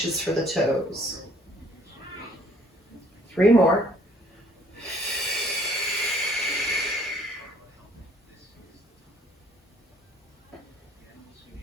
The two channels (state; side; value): normal; both; correlation 0.60